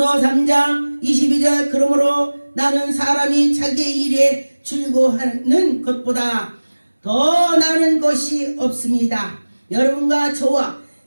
3장 22절 그러므로 나는 사람이 자기의 일에 즐거워하는 것보다 더 나은 것이 없습니다. 여러분과 저와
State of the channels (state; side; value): inverted; both; correlation -1.00